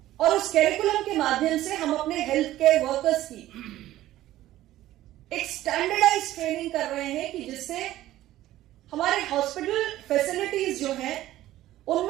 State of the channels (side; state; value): left; quieter; 14.6 dB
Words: और उस कैरिकुलम के माध्यम से हम अपने हेल्थ केयर वर्कर्स की एक स्टैंडर्डाइज ट्रेनिंग कर रहे हैं कि जिससे हमारे हॉस्पिटल फैसिलिटीज जो हैं